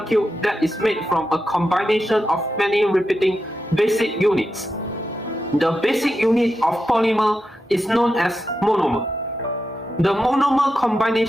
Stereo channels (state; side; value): normal; both; correlation 0.88